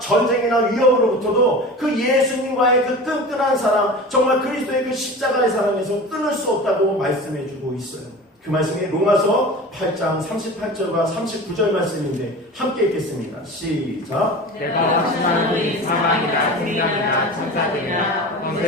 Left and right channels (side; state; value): both; normal; correlation 0.34